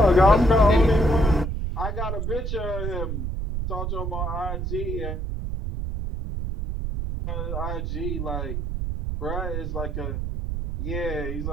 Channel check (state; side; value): noise; right; rumble, 3 dB below the sound